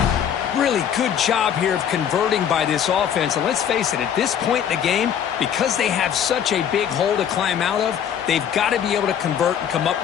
Really good job here of converting by this offense. And let's face it, at this point in the game, because they have such a big hole to climb out of, they've got to be able to convert and come up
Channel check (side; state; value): right; quieter; 8.9 dB